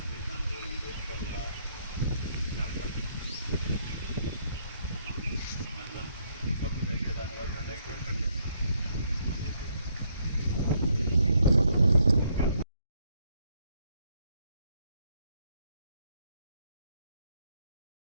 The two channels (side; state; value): both; inverted; correlation -0.71